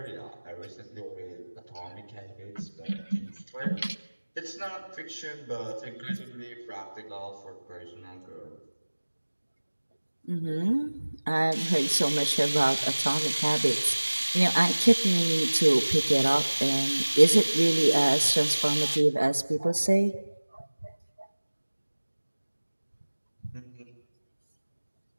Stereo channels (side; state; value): both; inverted; correlation -1.00